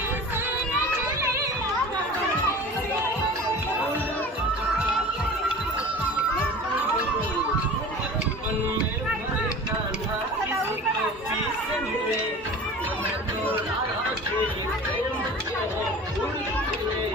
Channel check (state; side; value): normal; both; correlation 0.39